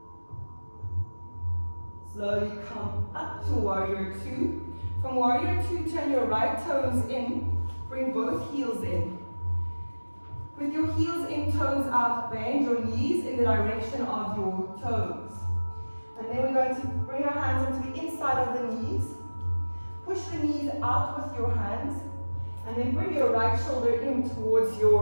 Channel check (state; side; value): inverted; both; correlation -1.00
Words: Slowly come up to warrior two. From warrior two, turn your right toes in. Bring both heels in. With your heels in, toes out, bend your knees in the direction of your toes. And then we're going to bring our hands onto the inside of the knees. Push the knees out with your hands. And then bring your right shoulder in towards